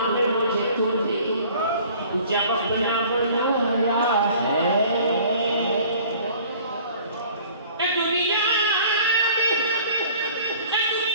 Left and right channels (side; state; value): both; inverted; correlation -0.50